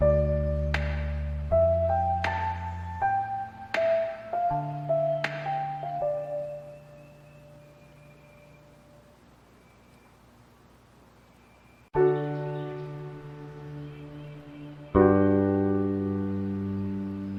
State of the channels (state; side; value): identical; both; correlation 1.00